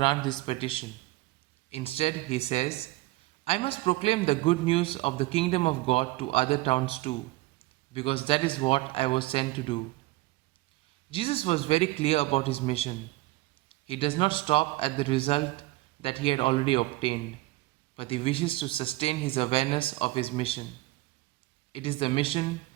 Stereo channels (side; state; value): left; quieter; 19.7 dB